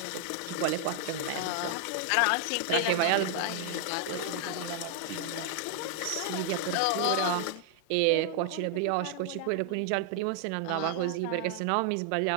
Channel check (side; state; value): both; different; correlation 0.00